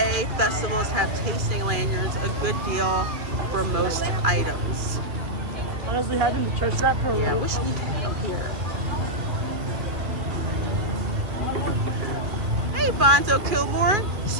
festivals have tasting lanyards, a good deal for most items. Honestly, having the church wrap program. Yeah, I wish we had them here. Hey, Bonzo Kilmore.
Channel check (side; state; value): left; late; 2.1 ms